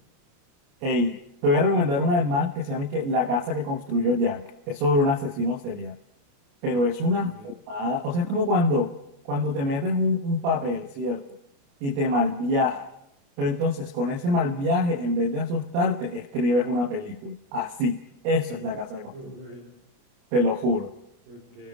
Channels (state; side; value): late; left; 29 ms